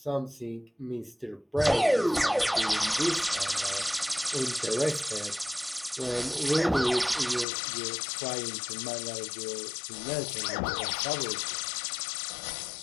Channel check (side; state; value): right; drops out; at 7.5 s